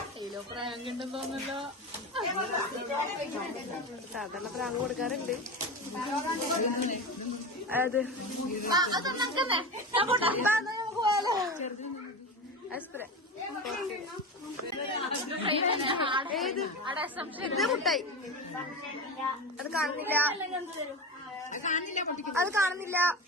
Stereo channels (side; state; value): both; normal; correlation 0.24